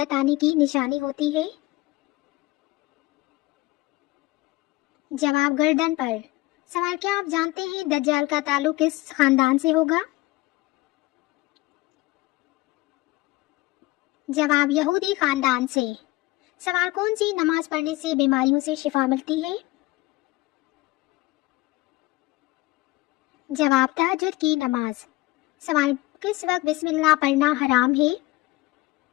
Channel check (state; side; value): quieter; right; 20.2 dB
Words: आने की निशानी होती है? जवाब गर्दन पर। सवाल क्या आप जानते हैं दज्जाल का ताल्लुक किस खानदान से होगा? जवाब यहूदी खानदान से। सवाल कौन सी नमाज पढ़ने से बीमारियों से शिफा मिलती है? जवाब तहज्जुद की नमाज। सवाल किस वक्त बिस्मिल्लाह पढ़ना हराम है?